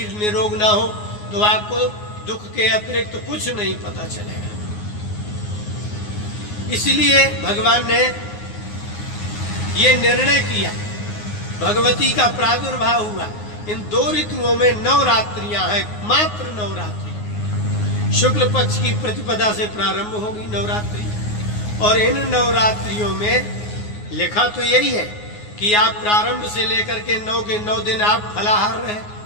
निरोग ना हो तो आपको दुख के अतिरिक्त तो कुछ नहीं पता चलेगा। इसलिए भगवान ने ये निर्णय किया, भगवती का प्रादुर्भाव हुआ। इन 2 ऋतुओं में नवरात्रियां हैं, मात्र नवरात्रि। शुक्ल पक्ष की प्रतिपदा से प्रारंभ होगी नवरात्रि, और इन नवरात्रियों में लिखा तो यही है कि आप प्रारंभ से लेकर के 9 के 9 दिन आप फलाहार रहे,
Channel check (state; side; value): late; right; 9.6 ms